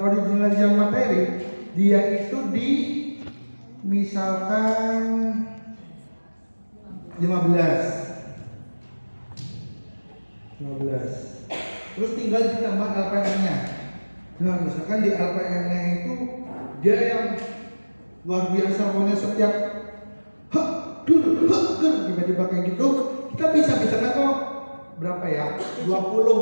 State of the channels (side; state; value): both; inverted; correlation -1.00